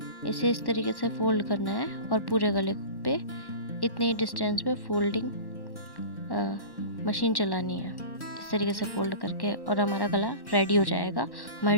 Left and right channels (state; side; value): late; right; 1.1 ms